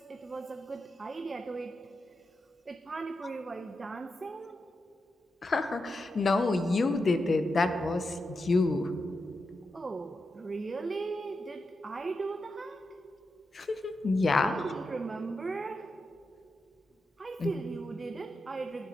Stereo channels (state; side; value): normal; both; correlation 0.87